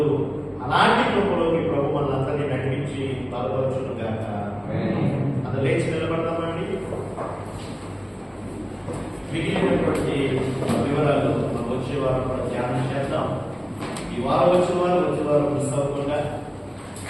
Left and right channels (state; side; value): identical; both; correlation 1.00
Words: అలాంటి కృపలోకి ప్రభు మనందరినీ నడిపించి బలపరచును గాక. అది లేచి నిలబడతామండి. మిగిలినటువంటి వివరాలు మనం వచ్చే వారం కూడా ధ్యానం చేద్దాం. ఈ వారం వచ్చే వారం మిస్ అవ్వకుండా